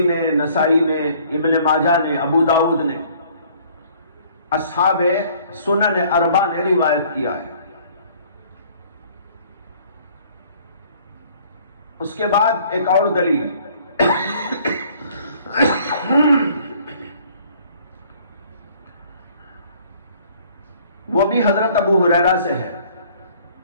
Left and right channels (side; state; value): both; inverted; correlation -0.57